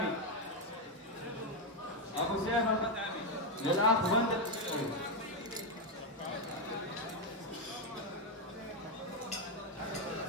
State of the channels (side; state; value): both; normal; correlation 0.05